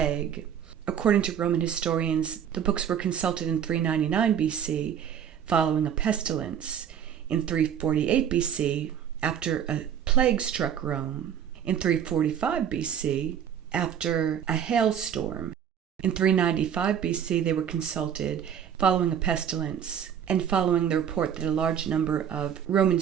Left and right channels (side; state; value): left; quieter; 8.8 dB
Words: According to Roman historians, the books were consulted in 399 BC following a pestilence, in 348 BC after a plague struck Rome, in 345 BC after a hailstorm. In 395 BC, they were consulted following a pestilence and following the report that a large number of Roman